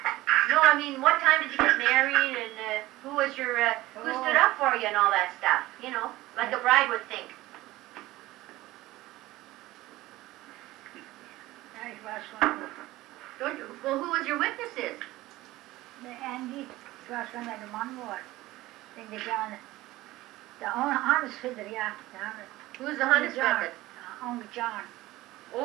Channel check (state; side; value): quieter; left; 17.8 dB